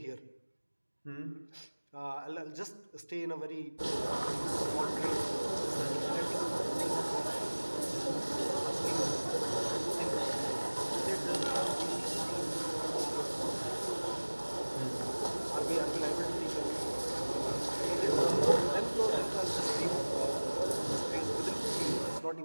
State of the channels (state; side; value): inverted; both; correlation -1.00